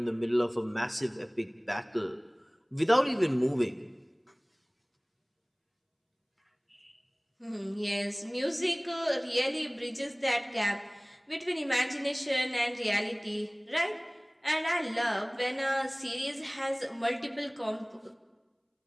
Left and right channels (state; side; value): identical; both; correlation 1.00